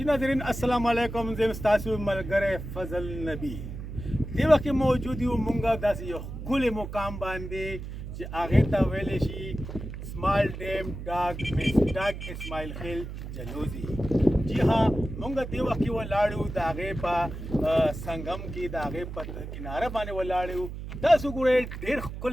जी नाज़रीन अस्सलाम वालेकुम ज़ेम स्तासु मलगरे फजल नबी दे वक्त मौजूद यू मुंगा दास यो कुल मुकाम बांधे जे आगे ता वेले शी स्मॉल डैम डाग इस्माइल खिल जलोजी जी हाँ मुंगा दे वक्त वो लाड़ू दागे पा संगम की दागे पर किनारा बाने वो लाड़ू दासु गुरे ढेर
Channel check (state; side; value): noise; right; hum, 8 dB below the sound